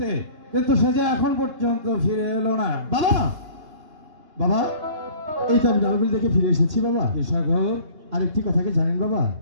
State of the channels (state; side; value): late; left; 2.8 ms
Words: কিন্তু সে যে এখন পর্যন্ত ফিরে এলো না। বাবা, বাবা, এই তো আমি নরবলি দেখে ফিরে এসেছি বাবা। কি সাগর? আরেকটি কথা কি জানেন বাবা?